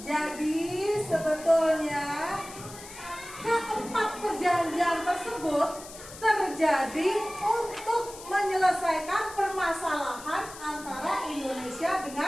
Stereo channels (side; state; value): left; noise; hiss, 15 dB below the sound